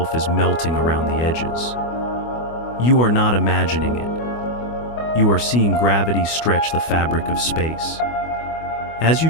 is melting around the edges. You are not imagining it. You are seeing gravity stretch the fabric of space. As you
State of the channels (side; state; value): right; late; 25 ms